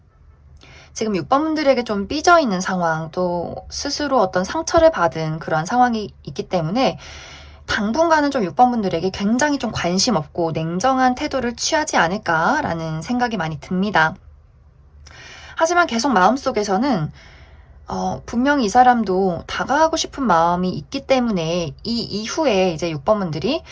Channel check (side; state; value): both; identical; correlation 1.00